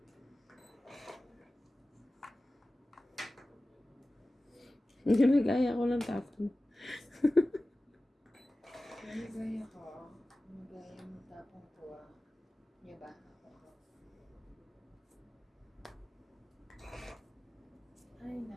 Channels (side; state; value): both; normal; correlation 0.96